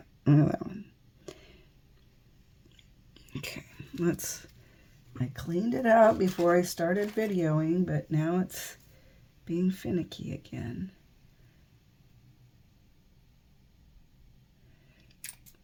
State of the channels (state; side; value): identical; both; correlation 1.00